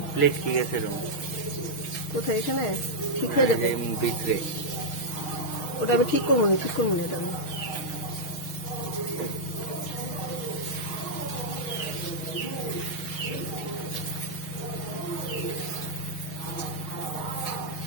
প্লেট ঠিক আছে রং কোথায় এখানে ঠিক হয়ে যাবে। ভিতরে ওটা আমি ঠিক করবো না, ঠিক করবো না এটা আমি।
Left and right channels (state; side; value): late; right; 6.4 ms